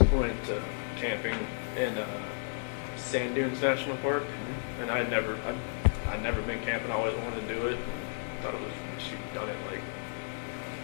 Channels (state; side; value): silent; right; digital silence